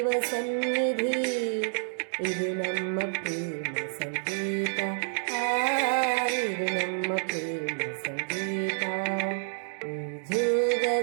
ಸನ್ನಿಧಿ ಇದು ನಮ್ಮ ಪ್ರೇಮ ಸಂಗೀತ ಇದು ನಮ್ಮ ಪ್ರೇಮ ಸಂಗೀತ ಈ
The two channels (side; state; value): left; silent; digital silence